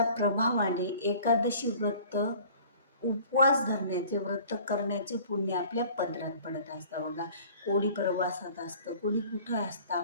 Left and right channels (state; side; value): inverted; both; correlation -0.49